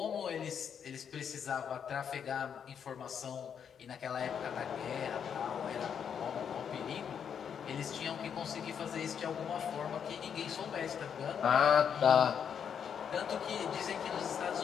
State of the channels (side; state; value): right; quieter; 7.7 dB